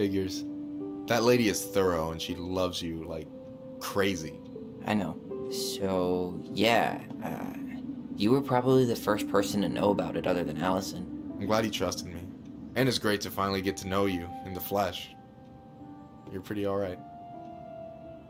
That lady is thorough and she loves you like crazy. I know. So, yeah, you were probably the first person to know about it other than Allison. I'm glad he trusted me. And it's great to finally get to know you in the flesh. You're pretty alright.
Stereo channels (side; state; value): both; identical; correlation 1.00